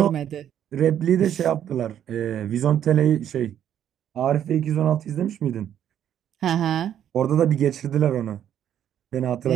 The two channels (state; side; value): quieter; left; 10.1 dB